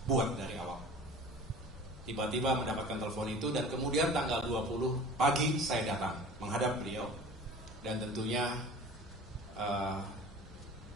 buat dari awal. Tiba-tiba mendapatkan telepon itu, dan kemudian tanggal 20 pagi saya datang menghadap beliau, dan tentunya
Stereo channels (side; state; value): both; normal; correlation 0.41